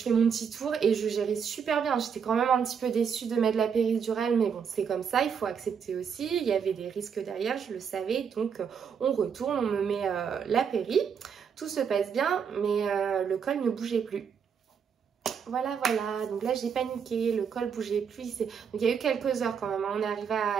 mon petit tour et je gérais super bien. J'étais quand même un petit peu déçue de mettre la péridurale, mais bon, c'est comme ça, il faut accepter aussi. Il y avait des risques derrière, je le savais. Donc on retourne, on me met la péri. Tout se passe bien, mais le col ne bougeait plus. Voilà, donc là j'ai paniqué, le col bougeait plus. Donc il y a eu quelques heures quand même. On est arrivé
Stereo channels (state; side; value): quieter; left; 6.9 dB